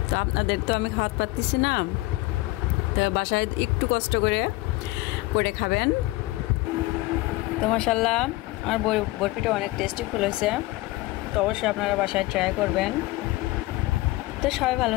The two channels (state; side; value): quieter; right; 19.8 dB